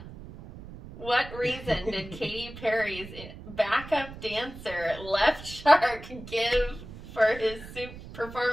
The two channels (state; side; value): noise; right; rumble, 14 dB below the sound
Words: What reason did Katy Perry's backup dancer, Left Shark, give for his